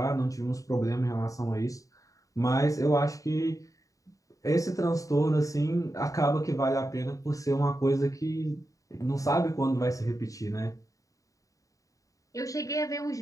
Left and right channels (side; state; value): right; late; 0.16 ms